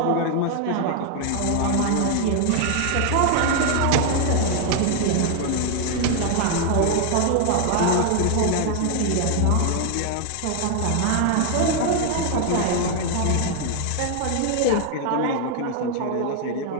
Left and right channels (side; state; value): both; different; correlation 0.00